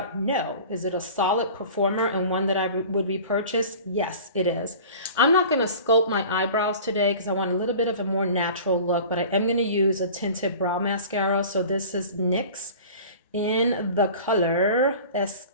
No. Is it a solid performer and one that I would repurchase? Yes, it is. I'm not going to sculpt my eyebrows today because I want a little bit of a more natural look, but I am going to use a tinted brow mascara. So this is NYX in the color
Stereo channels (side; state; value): both; inverted; correlation -0.41